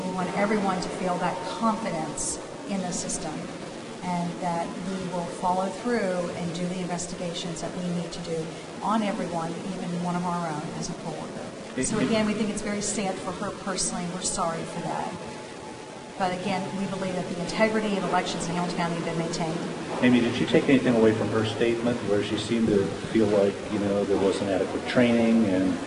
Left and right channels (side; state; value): both; identical; correlation 1.00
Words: we want everyone to feel that confidence in the system, and that we will follow through and do the investigations that we need to do on everyone, even one of our own as a poll worker. So again, we think it's very sad for her personally. We're sorry for that. But again, we believe that the integrity of elections in Hamilton County have been maintained. Amy, did you take anything away from her statement where she seemed to feel like, there wasn't adequate training